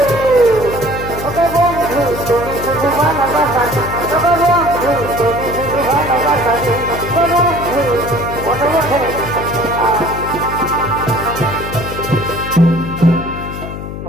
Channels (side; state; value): left; noise; hum, 8 dB below the sound